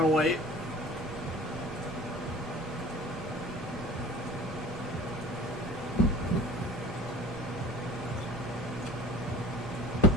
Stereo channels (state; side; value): normal; both; correlation 0.44